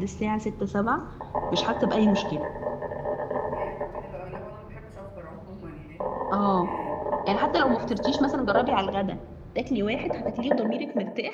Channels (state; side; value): identical; both; correlation 1.00